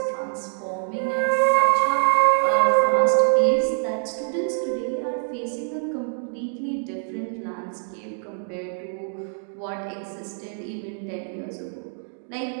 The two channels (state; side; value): silent; left; digital silence